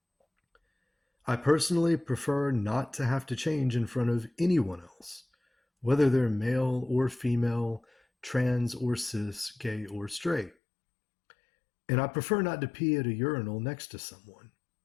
I personally prefer not to have to change in front of anyone else, whether they're male or female, trans or cis, gay or straight. And I prefer not to pee at a urinal next to someone.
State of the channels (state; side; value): drops out; right; at 10.5 s